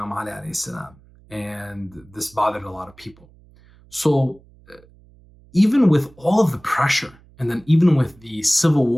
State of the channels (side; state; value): right; noise; hum, 27 dB below the sound